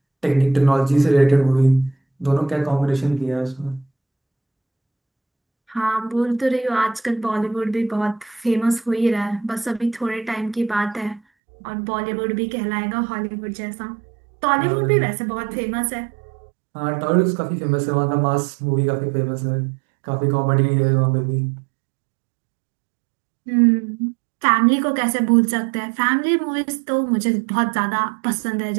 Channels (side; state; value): left; drops out; at 11.2 s